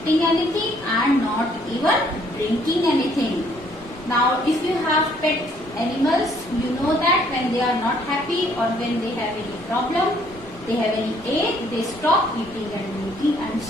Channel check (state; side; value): normal; both; correlation 0.64